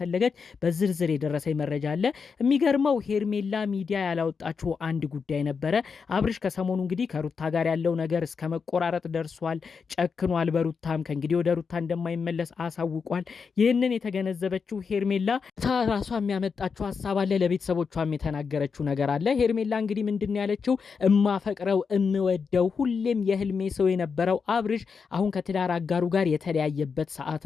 በዝርዝር የደረሰኝ መረጃ አለ። የሚገርመው ሄርሜላ ሚዲያ ያላወጣችው አንድ ጉዳይ ነበረ። አብርሽ ከሰሞኑ እንግዲህ ከሩታ ጋር ያለው ነገር እስከ መቆራረጥ ደርሷል። ጨክኗል። በሩታም ከእንግዲህ ወደ ሩታ እንደማይመለስ አሳውቋል። ይህንን የተገነዘበችው ሄርሜላ ራሷ የሚያመጣችው ሀሳብ አለ። ለቤተሰቦቿም የተናገረችው ነገር አለ። ሄርሜላ እንግዲህ ምንድን ያለችው እማፈቅረው እምወደው ሁሌም የህልሜ ሰው የነበረው አብርሽ አሁን ከትዳር አጋሩ ጋር የተለያየበት ሰዓት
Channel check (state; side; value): quieter; right; 5.6 dB